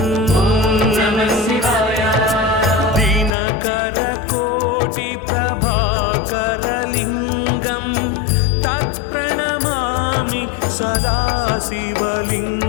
दिनकरकोटिप्रभाकरलिङ्गं तत्प्रणमामि सदा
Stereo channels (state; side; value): drops out; right; at 3.3 s